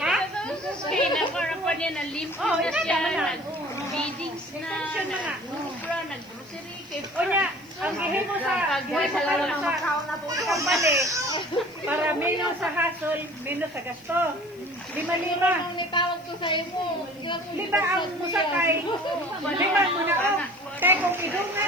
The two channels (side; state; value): left; noise; hiss, 27 dB below the sound